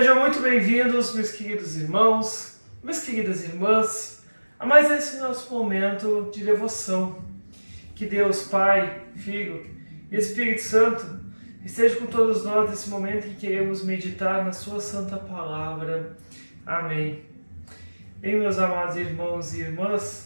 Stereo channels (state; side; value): inverted; both; correlation -1.00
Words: muito bem-vindos, meus queridos irmãos, minhas queridas irmãs, a mais esse nosso momento de devoção. Que Deus, Pai, Filho e Espírito Santo esteja com todos nós nesse momento em que queremos meditar na Sua Santa Palavra. Amém. Bem, meus amados irmãos e